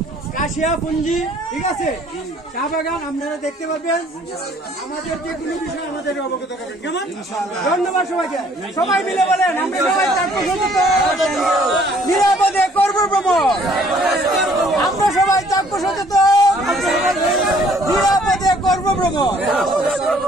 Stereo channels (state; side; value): normal; both; correlation 0.60